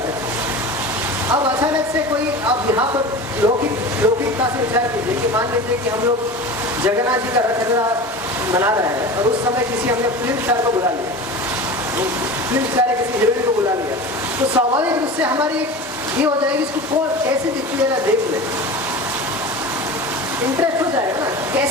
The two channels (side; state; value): both; normal; correlation 0.32